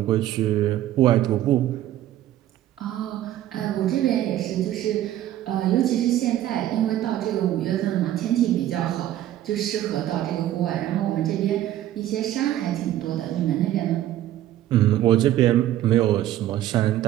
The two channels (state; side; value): quieter; left; 13.1 dB